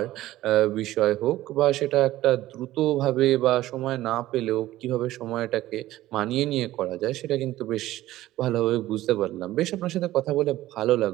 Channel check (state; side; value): quieter; left; 15.4 dB